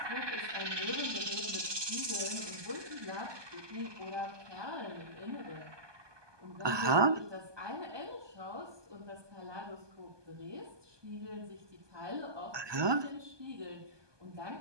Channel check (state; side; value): late; left; 1.2 ms